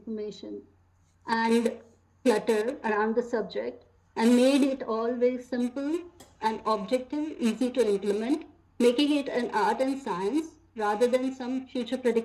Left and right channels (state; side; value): identical; both; correlation 1.00